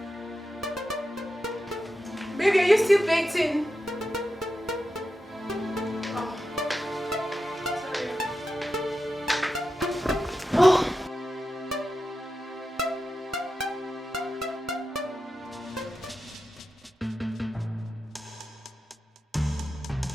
Baby, are you still baking?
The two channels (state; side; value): normal; both; correlation 0.90